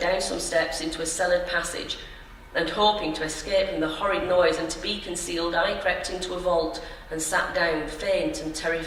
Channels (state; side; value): identical; both; correlation 1.00